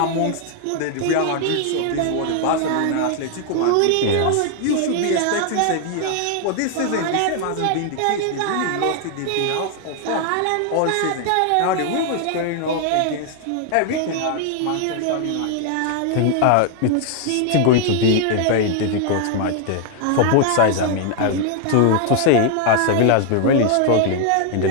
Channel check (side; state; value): both; different; correlation 0.00